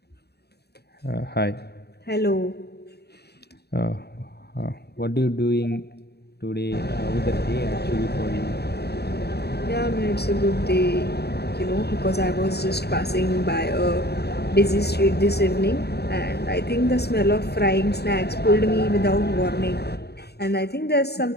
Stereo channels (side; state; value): right; late; 0.48 ms